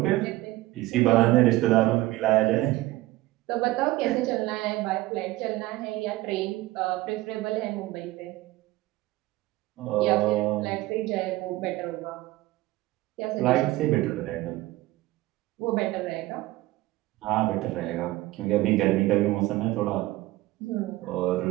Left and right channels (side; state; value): left; quieter; 18.0 dB